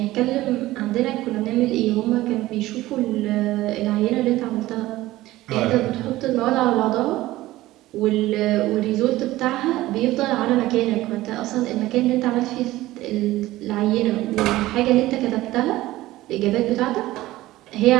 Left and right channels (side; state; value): left; quieter; 16.9 dB